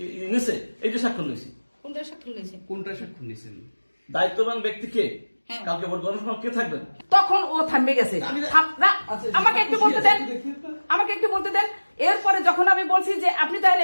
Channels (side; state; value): both; inverted; correlation -1.00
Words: নিছে, এই যে স্বাক্ষর নিয়েছি। কোনটা স্বাক্ষর নিয়েছেন? দায়িত্ববান ব্যক্তিকে কালকে ভোট গণনার সময় কে থাকবেন? তখন ও থামবে গেছে। আমাকে একটু বলতে দেন, আমাকে একটু বলতে দেন। এরপরে যখন আমি বলছি যে আপনি তাহলে